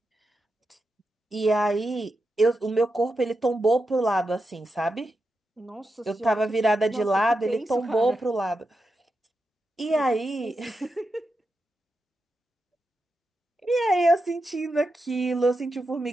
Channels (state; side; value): normal; both; correlation 0.88